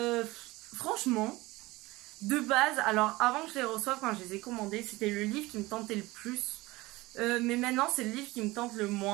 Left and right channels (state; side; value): quieter; left; 20.5 dB